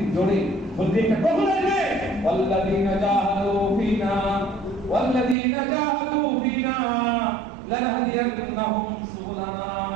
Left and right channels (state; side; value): drops out; left; at 5.4 s